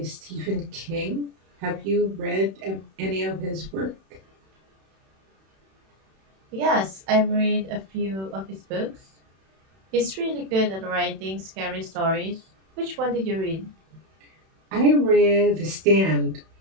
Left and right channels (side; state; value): left; late; 31 ms